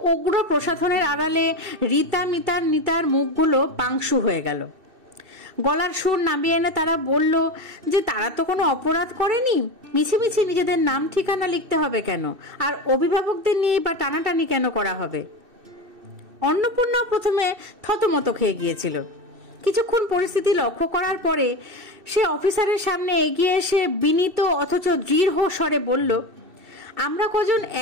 উগ্র প্রসাধনের আড়ালে রীতা, মিতার, নিতার মুখগুলো পাংশু হয়ে গেল। গলার সুর নামিয়ে এনে তারা বলল যে তারা তো কোনো অপরাধ করেনি, মিছিমিছি নিজেদের নাম ঠিকানা লিখতে হবে কেন, আর অভিভাবকদের নিয়ে বা টানাটানি কেন করা হবে। অন্নপূর্ণা প্রথমে থতমত খেয়ে গিয়েছিল। কিছুক্ষণ পরিস্থিতি লক্ষ্য করার পরে সে অফিসারের সামনে এগিয়ে এসে বিনীত অথচ দৃঢ় স্বরে বলল, আমরা কজন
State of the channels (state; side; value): late; left; 2.6 ms